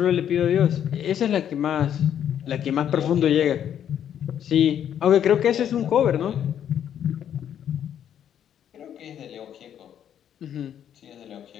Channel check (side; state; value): right; quieter; 9.6 dB